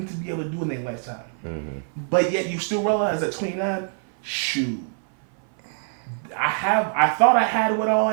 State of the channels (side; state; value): left; silent; 58 dB below the other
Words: to be able to do in their lifetime. But yet you still realize at 29, shoot, I thought I had what all I